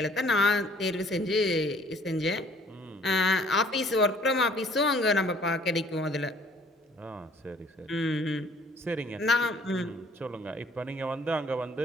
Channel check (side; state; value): both; normal; correlation 0.58